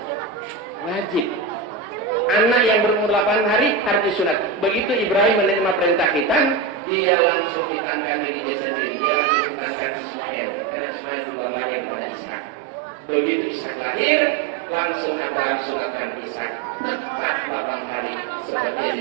Wajib. Anak yang berumur 8 hari harus disunat. Begitu Ibrahim menerima perintah khitan, dia langsung khitankan diri dia sendiri. Dia langsung khitankan Ismail. Karena Ismail duluan lahir pada Ishak. Begitu Ishak lahir, langsung Abraham sunatkan Ishak. Tepat 8 hari seperti yang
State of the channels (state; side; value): drops out; left; at 6.8 s